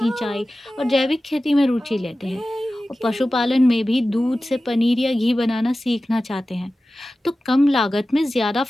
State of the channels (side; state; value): both; normal; correlation 0.95